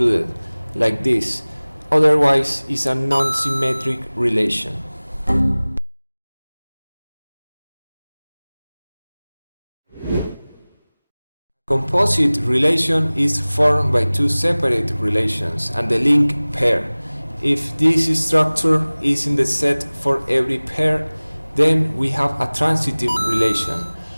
like this. Otherwise, it's a non-symmetric relation. Composite relation is formed by two separate relations and the link pair. If this structure is in the set for every pair, then we have a transitive relation.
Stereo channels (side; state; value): both; inverted; correlation -1.00